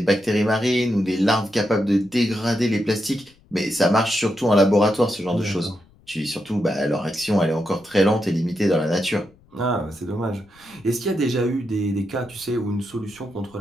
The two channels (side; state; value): left; noise; rumble, 29 dB below the sound